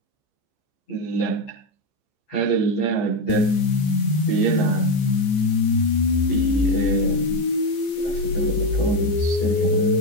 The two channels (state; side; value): late; right; 14 ms